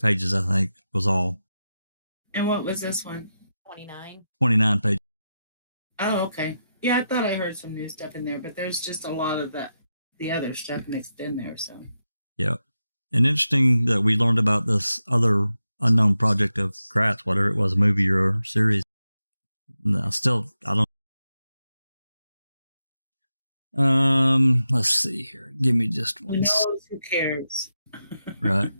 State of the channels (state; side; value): inverted; both; correlation -0.89